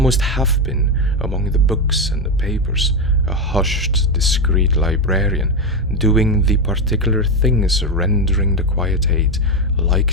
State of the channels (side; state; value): both; normal; correlation 0.10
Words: have been, among the books and the papers, a hushed, discreet librarian, doing the particular things rendering the quiet aid,